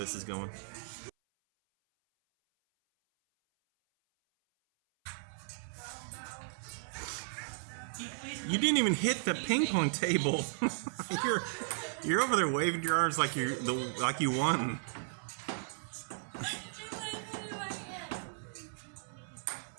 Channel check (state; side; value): silent; left; 54 dB below the other